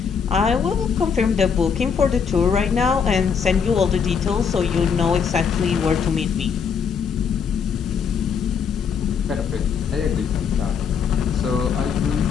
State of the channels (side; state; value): right; quieter; 6.5 dB